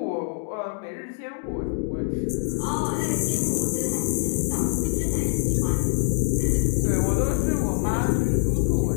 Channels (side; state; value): right; silent; 62 dB below the other